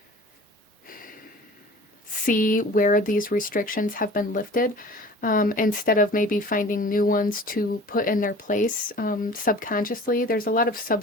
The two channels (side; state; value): both; normal; correlation 0.43